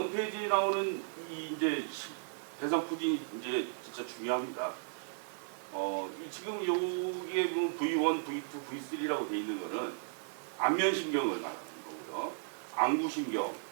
페이지에 나오는 이 이제 대상포진이 이제 진짜 중요합니다. 지금 여기에 보면 V1, V2, V3라고 되어 있는 거는 안면신경을 말하는 거고요. 안구신경,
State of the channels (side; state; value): left; silent; 54 dB below the other